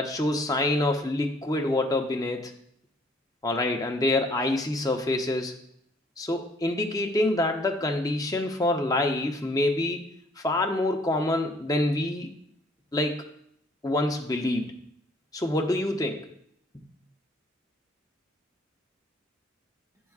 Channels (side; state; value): both; normal; correlation 0.60